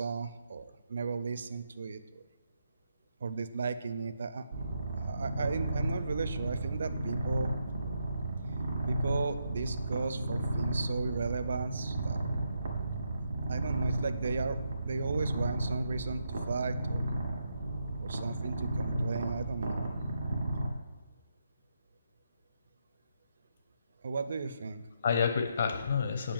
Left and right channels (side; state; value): both; inverted; correlation -0.80